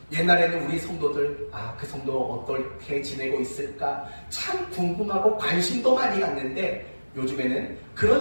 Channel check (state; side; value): inverted; both; correlation -1.00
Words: 옛날에는 우리 성도들 그 성도 어떻게 지내고 있을까 참 궁금하고 관심도 많이 갔는데 요즘에는